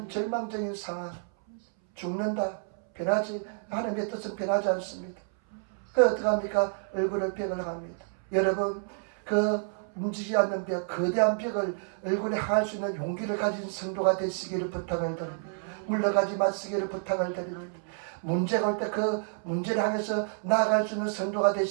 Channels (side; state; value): left; silent; 58 dB below the other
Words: 절망적인 상황, 죽는다, 변하지, 하나님의 뜻은 변하지 않습니다. 그 어떻게 합니까? 얼굴을 벽을 합니다. 여러분 그 움직이지 않는 벽, 거대한 벽을 얼굴에 향할 수 있는 용기를 가진 성도가 되시기를 부탁을 드립니다. 물러가지 마시기를 부탁을 드립니다. 문제가 올 때 그 문제를 향해서 나아갈 수 있는 성도가